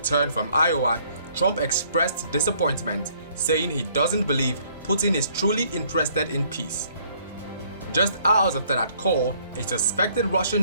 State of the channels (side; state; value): both; inverted; correlation -0.63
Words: from Iowa, Trump expressed disappointment, saying he doesn't believe Putin is truly interested in peace. Just hours after that call, a suspected